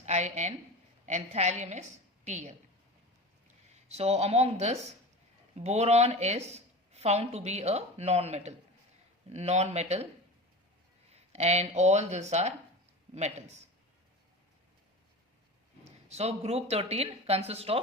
In, and thallium is Tl. So among this, boron is found to be a non-metal, and all these are metals. So group 13 consists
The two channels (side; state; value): both; normal; correlation 0.31